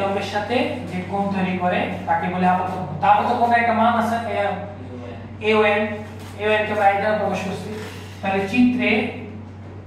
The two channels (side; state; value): both; identical; correlation 1.00